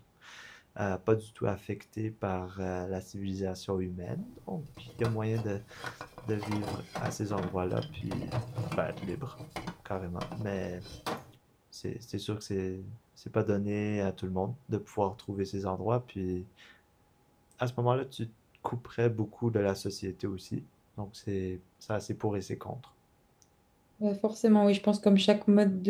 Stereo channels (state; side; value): identical; both; correlation 1.00